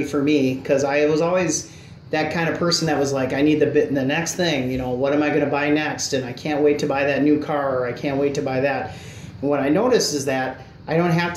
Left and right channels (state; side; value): identical; both; correlation 1.00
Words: for me, because I was always that kind of person that was like, I need the next thing, you know, what am I going to buy next? And I can't wait to buy that new car, or I can't wait to buy that. And what I noticed is that I don't have